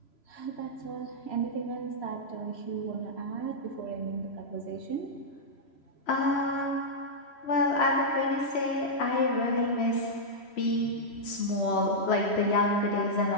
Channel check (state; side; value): late; right; 3.0 ms